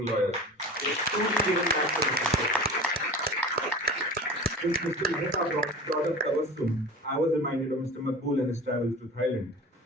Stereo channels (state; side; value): normal; both; correlation 0.36